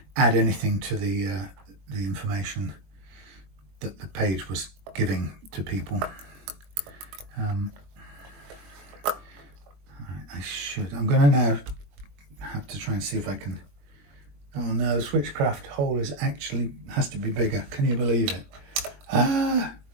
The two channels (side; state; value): left; late; 21 ms